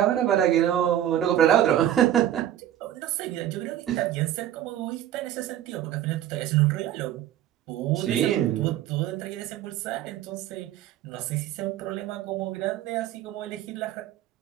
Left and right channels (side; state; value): left; quieter; 11.7 dB